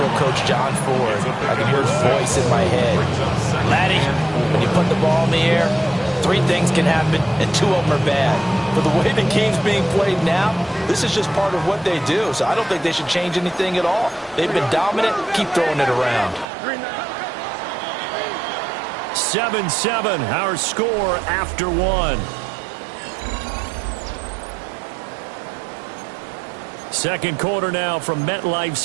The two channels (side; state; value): left; drops out; at 16.4 s